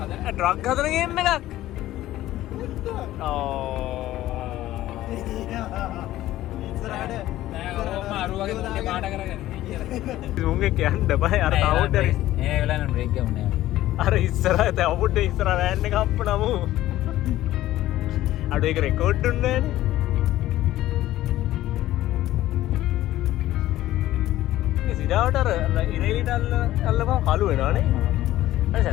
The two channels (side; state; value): right; quieter; 14.8 dB